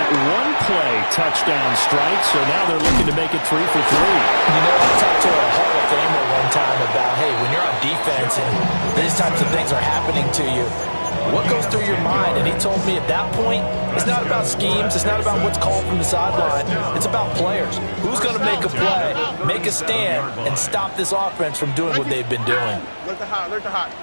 1-play touchdown strike, so now they're looking to make it 3 for 3. You know, I talked to a Hall of Famer one time about, hey, when you're on defense and these types of things are happening to you, what goes through your mind? And he told me at that point, it's not about schemes. It's not about what's called from the sideline. It's about players. Who's going to make a play, make a stand, and stop this offense from doing what they've been doing? Look the hot, look the hot.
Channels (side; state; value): both; inverted; correlation -1.00